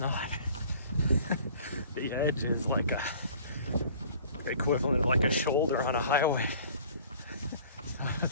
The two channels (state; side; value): inverted; both; correlation -0.50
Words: The edge is like a equivalent of like a shoulder on a highway. So